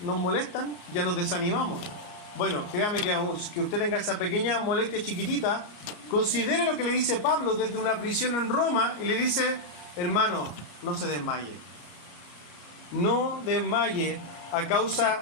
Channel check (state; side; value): late; right; 34 ms